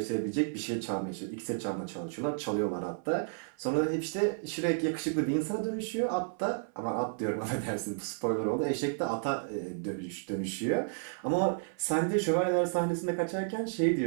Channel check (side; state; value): left; silent; 56 dB below the other